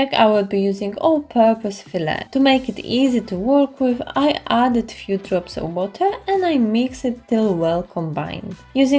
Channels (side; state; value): both; identical; correlation 1.00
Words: I will be using all-purpose filler. To make it easy to work with, I added few drops of water and I mix it till well combined.